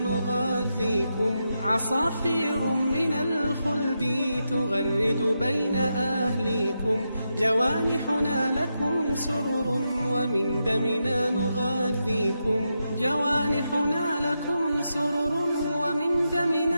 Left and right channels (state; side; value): inverted; both; correlation -0.86